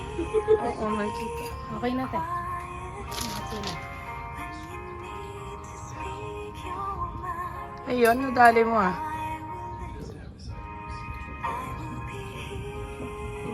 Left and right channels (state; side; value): identical; both; correlation 1.00